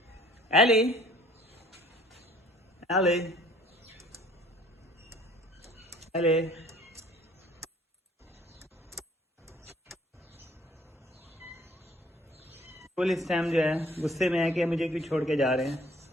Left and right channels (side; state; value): both; normal; correlation 0.56